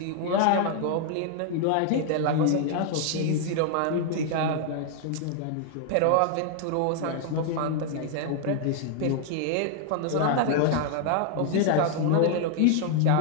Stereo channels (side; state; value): both; different; correlation 0.00